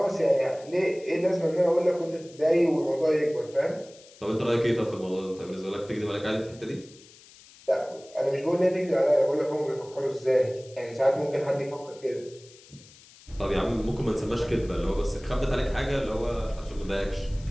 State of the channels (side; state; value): left; noise; hiss, 23 dB below the sound